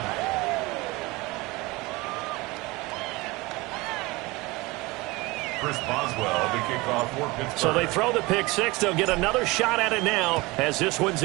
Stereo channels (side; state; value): left; quieter; 22.9 dB